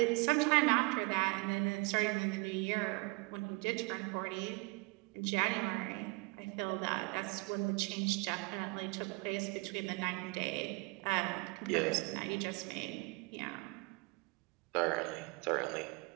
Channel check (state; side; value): quieter; left; 28.9 dB